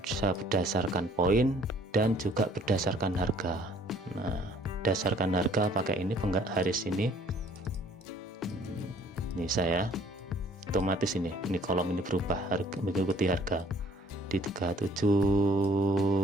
berdasarkan poin, dan juga berdasarkan harga. Nah, berdasarkan harga pakai ini garis ini. Ini saya otomatis ini kolom ini berubah harga, mengikuti harga di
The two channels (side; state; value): both; normal; correlation 0.58